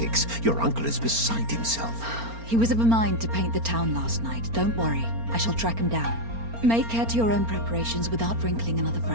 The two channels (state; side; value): late; left; 4.3 ms